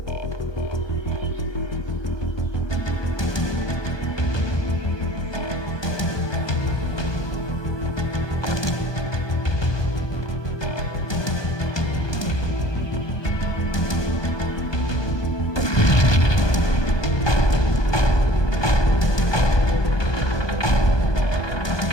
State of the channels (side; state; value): right; late; 1.2 ms